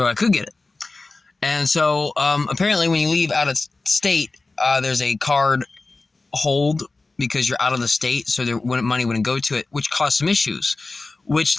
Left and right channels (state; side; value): quieter; right; 3.5 dB